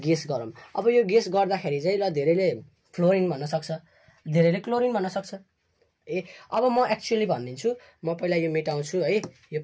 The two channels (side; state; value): both; identical; correlation 1.00